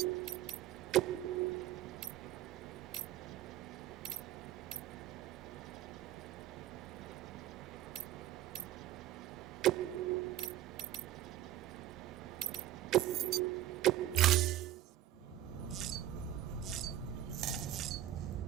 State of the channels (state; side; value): quieter; left; 13.0 dB